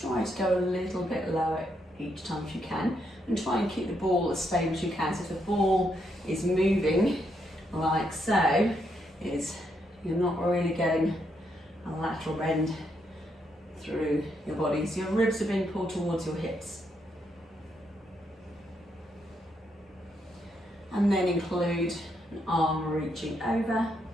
to go a little bit lower each time if you can, and try and keep the ball as stable as you can. So if the ball is moving like so, you're not really getting a lateral bend through your body. So your ribs are being pulled towards your hips. And then include an arm reaching over.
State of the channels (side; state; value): both; normal; correlation 0.78